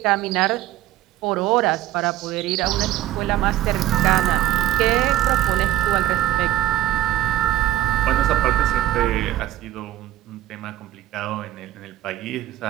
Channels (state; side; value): quieter; left; 14.0 dB